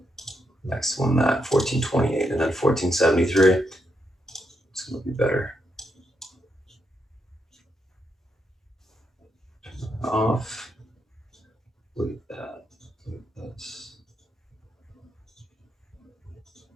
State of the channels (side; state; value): both; normal; correlation 0.81